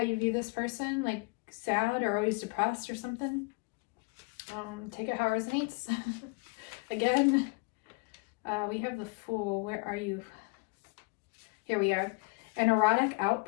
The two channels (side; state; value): right; quieter; 31.4 dB